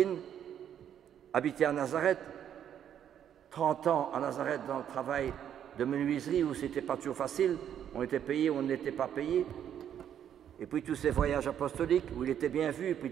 habiter à Nazareth, 30 ans à Nazareth dans le travail de menuiserie où c'était pas toujours facile, on était payé ou on n'était pas payé. Et puis tous ces voyages apostoliques où il était bien vu, et puis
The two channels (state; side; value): quieter; left; 9.5 dB